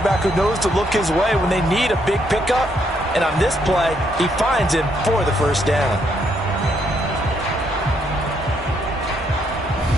who knows to look his way when they need a big pickup. And on this play, he finds him for the 1st down.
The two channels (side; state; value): both; normal; correlation 0.73